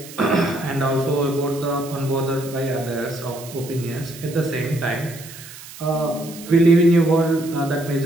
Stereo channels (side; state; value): right; noise; hiss, 16 dB below the sound